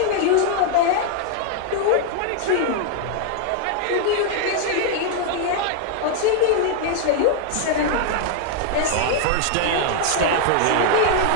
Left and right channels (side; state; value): both; different; correlation 0.00